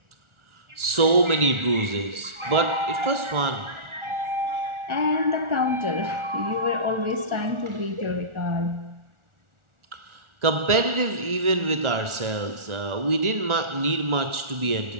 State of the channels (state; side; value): late; left; 1.4 ms